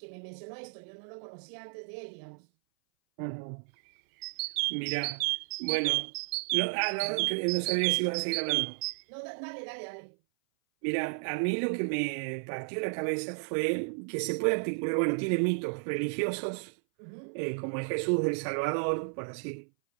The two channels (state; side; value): silent; left; 56 dB below the other